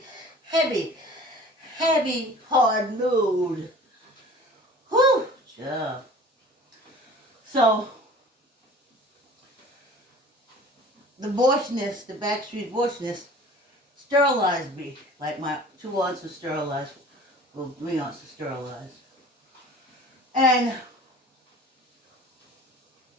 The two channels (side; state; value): both; normal; correlation 0.44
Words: hard load. Whew, So, the abortionist, the backstreet abortionist, sterilized me. Like my 2 aunts were sterilized. Well, 3 aunts were sterilized. And